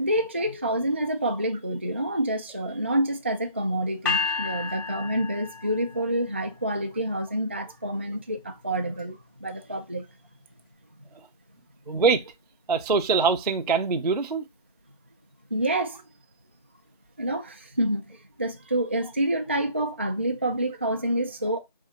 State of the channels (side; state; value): both; inverted; correlation -0.41